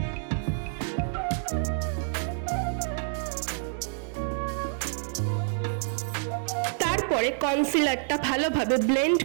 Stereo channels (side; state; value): left; silent; digital silence